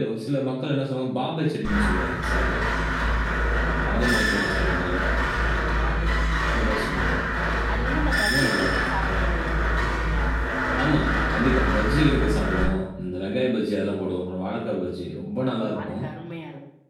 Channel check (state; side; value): identical; both; correlation 1.00